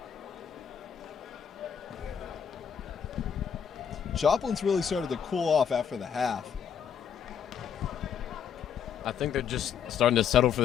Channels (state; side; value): quieter; right; 7.9 dB